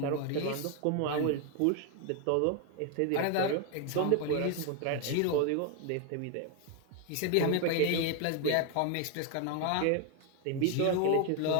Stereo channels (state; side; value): different; both; correlation 0.01